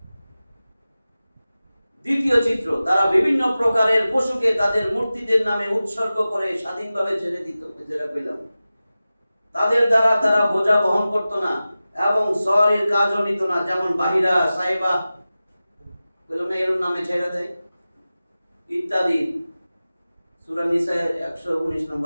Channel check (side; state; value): both; inverted; correlation -0.96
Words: দ্বিতীয় চিত্র, তারা বিভিন্ন প্রকারের পশুকে তাদের মূর্তিদের নামে উৎসর্গ করে স্বাধীনভাবে ছেড়ে দিত। যেটা পেলাম, তাদের দ্বারা তারা বোঝা বহন করত না এবং শহরের কাজও নিত না, যেমন বাহিরা সাইবা পেলাম না, এর নামে ছেড়ে দেয় ইত্যাদি। সূরা নিসা 119